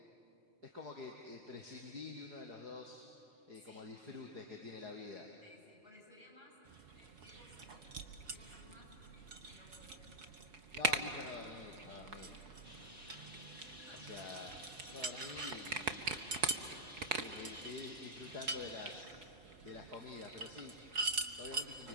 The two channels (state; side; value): late; left; 5.0 ms